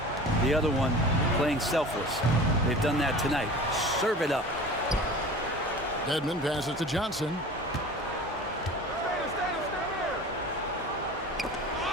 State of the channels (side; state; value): both; normal; correlation 0.39